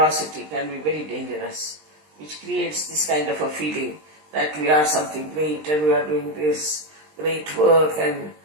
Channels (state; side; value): late; left; 20 ms